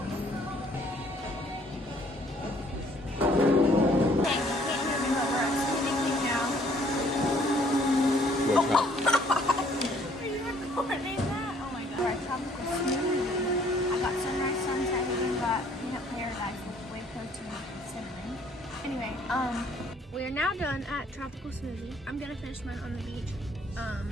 What's that? Are you recording that? Oh my god. Alright, tropical smoothie. I got sunrise sunset and we got peanut paradise with whey protein and cinnamon. Anyway, we are now done at tropical smoothie. I'm gonna finish mine on the beach.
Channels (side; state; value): both; normal; correlation 0.61